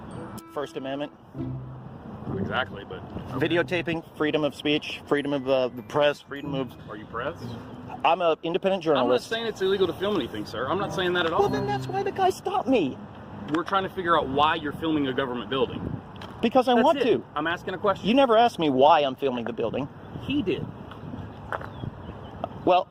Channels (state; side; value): identical; both; correlation 1.00